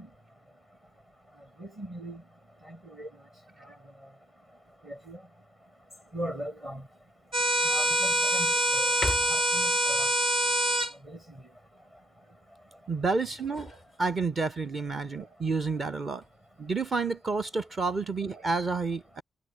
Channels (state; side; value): normal; both; correlation 0.67